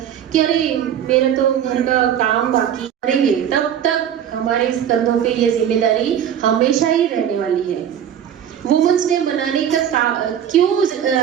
कि अरे मेरा तो घर का काम बाकी करेंगे। तब तक हमारे कंधों पे ये जिम्मेदारी हमेशा ही रहने वाली है। वुमेन्स डे मनाने का क्यों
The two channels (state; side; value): quieter; left; 9.5 dB